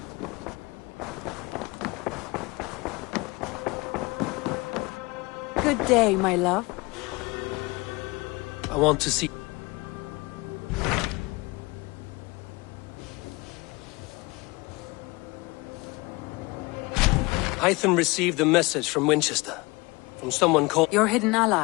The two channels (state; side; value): quieter; right; 24.2 dB